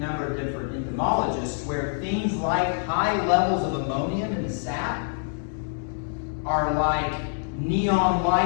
of different entomologists where things like high levels of ammonium in the sap are like neon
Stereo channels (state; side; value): silent; right; 61 dB below the other